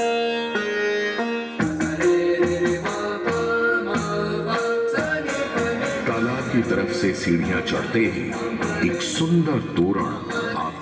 तालाब की तरफ से सीढ़ियां चढ़ते ही एक सुंदर तोरण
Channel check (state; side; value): identical; both; correlation 1.00